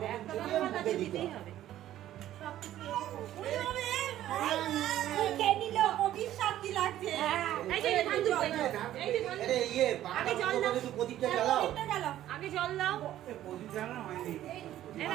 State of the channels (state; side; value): quieter; left; 12.9 dB